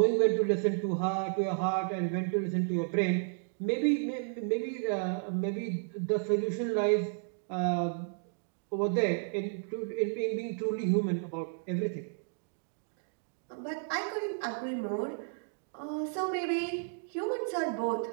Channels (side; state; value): left; silent; digital silence